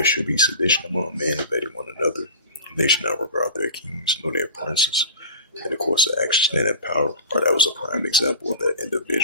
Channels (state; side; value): inverted; both; correlation -0.35